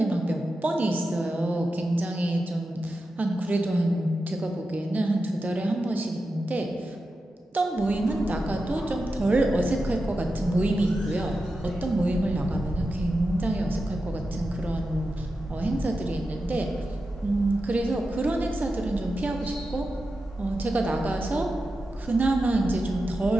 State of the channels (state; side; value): normal; both; correlation 0.90